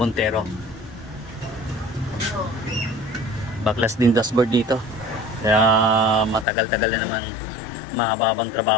Baklas din dashboard dito. Kaya matagal-tagal na naman, mahababang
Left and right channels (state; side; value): drops out; right; at 6.5 s